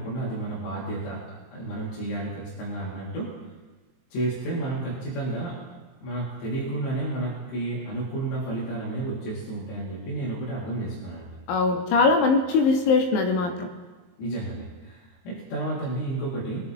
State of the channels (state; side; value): late; right; 23 ms